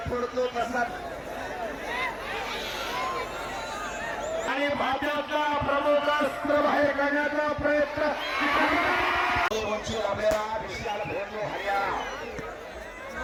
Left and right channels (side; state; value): both; identical; correlation 1.00